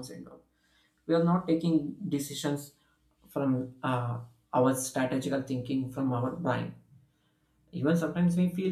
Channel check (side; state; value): both; identical; correlation 1.00